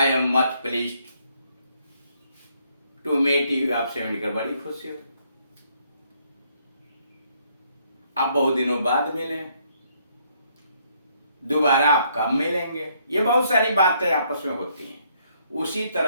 am much pleased to meet you, आपसे मिलकर बड़ी खुशी हुई, आप बहुत दिनों बाद मिले, दोबारा आप कब मिलेंगे, ये बहुत सारी बातें आपस में होती हैं। उसी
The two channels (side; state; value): both; inverted; correlation -0.70